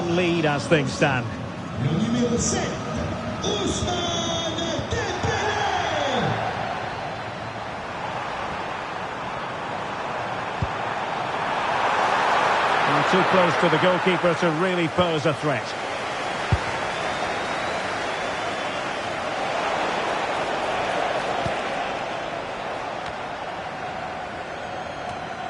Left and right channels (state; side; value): identical; both; correlation 1.00